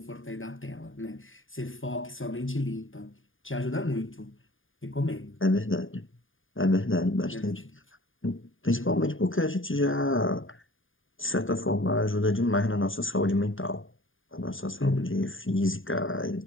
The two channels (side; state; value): right; late; 0.58 ms